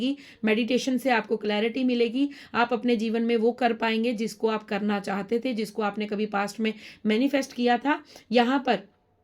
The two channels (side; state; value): both; identical; correlation 1.00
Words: मेडिटेशन से आपको क्लैरिटी मिलेगी। आप अपने जीवन में वो कर पाएंगे जिसको आप करना चाहते थे, जिसको आपने कभी पास्ट में मैनिफेस्ट किया था। यहाँ पर